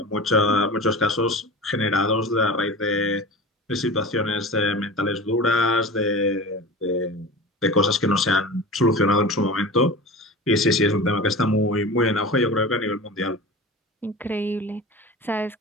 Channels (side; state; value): both; normal; correlation 0.33